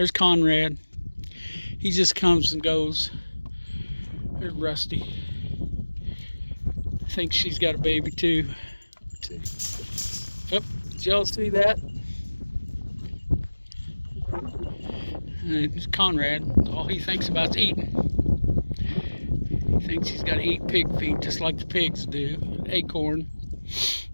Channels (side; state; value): both; inverted; correlation -1.00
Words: Conrad. He just comes and goes. There's Rusty. I think she's got a baby too. Yep, did y'all see that? And it's Conrad. All he thinks about is eating. He thinks he's got to eat pig feet just like the pigs do. Acorn.